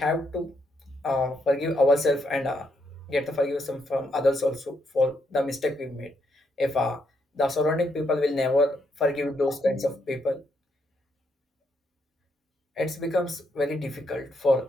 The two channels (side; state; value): both; normal; correlation 0.77